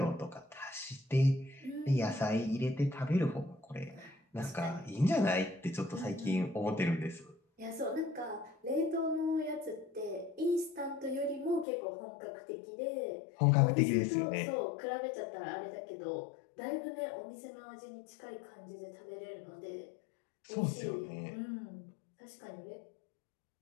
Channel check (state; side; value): drops out; right; at 11.7 s